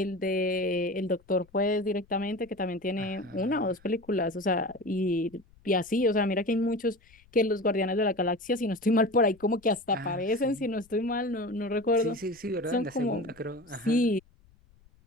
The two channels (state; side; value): noise; left; rumble, 29 dB below the sound